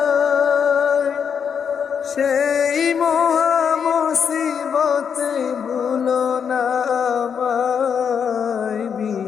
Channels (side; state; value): right; quieter; 7.1 dB